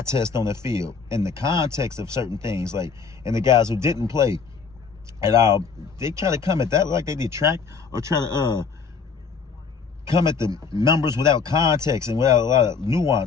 test on the field and the context of certain things. Like, and the guys who didn't play at all, they try to come at that like they detract or try to come at the numbers without context and without a lot of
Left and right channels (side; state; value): right; quieter; 5.5 dB